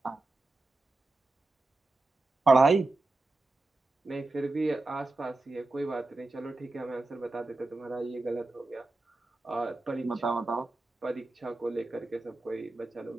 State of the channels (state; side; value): quieter; left; 3.1 dB